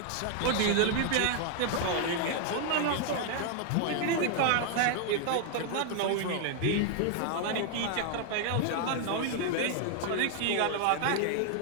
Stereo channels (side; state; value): both; different; correlation 0.00